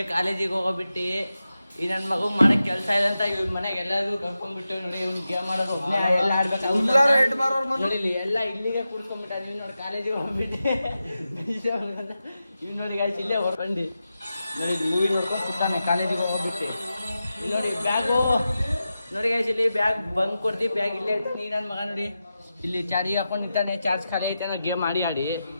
ಕಾಲೇಜಿಗೆ ಹೋಗೋಬಿಟ್ಟು ಈ ನನ್ನ ಮಗು ಮಾಡಕ್ ಕೆಲಸ ಇದೆ ಅಂತ ಇವ್ರ ಮನೆಗೆ ಎಲ್ಲರಿಗೂ ಕರ್ಕೊಂಡ್ಬಿಟ್ಟು ನೋಡಿ ಇವ್ನು ಗೇಮ್ ಮಾಡೋದು ಎಲ್ಲ ಆಡ್ಬೇಕು ನೋಡಿ ಎಲ್ಲ ಇಲ್ಲಿಗೆ ಕುಡ್ಕೊಂಡ್ಬಿಟ್ಟ ನೀವು ನೋಡಿ ಕಾಲೇಜಿಗೆ ಹೋಗ್ಬಿಟ್ಟು ಇವ್ ನೋಡಿ ಗಾಯ್ಸ್ ಇಲ್ಲೇ ಹೊರ್ಕೊಂಡು ನೋಡಿ ಮೂವಿ ನೋಡ್ಕೊಂಡು ಕೂತಾನೆ ಕಾಲೇಜಿಗೆ ಹೋಗ್ಬಿಟ್ಟು ಇಲ್ಲಿ ನೋಡಿ ಬ್ಯಾಗು ನೋಡಿ ಗಾಯ್ಸ್ ಇಲ್ಲಿ ಬ್ಯಾಗ್ ಬಂಕ್ ಕೊಡ್ತೀವಿ ಬ್ಯಾಗ್ ಇಲ್ಲೇ ಇತ್ತು ನೀ ನನ್ನ ಮಗ ನೋಡಿ ಇಲ್ಲಿ ಚಾರ್ಜಿಗೆ ಹಾಕೊಂಡು ನಿಂತಾನೆ ಚಾರ್ಜ್ ಖಾಲಿ ಐತೆ ಗೇಮ್ ಆಡಿ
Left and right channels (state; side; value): inverted; both; correlation -0.91